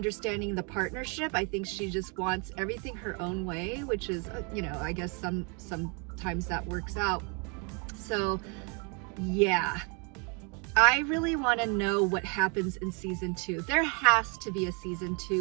the partnership. I think she just wants everything her own way, which is, you know, I guess sometimes that works out. So yeah, I really want to know what happens in season 2. There has to be a season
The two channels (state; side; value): quieter; left; 34.5 dB